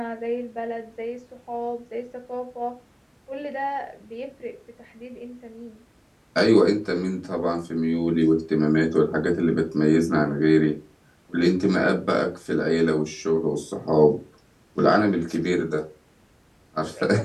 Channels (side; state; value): both; identical; correlation 1.00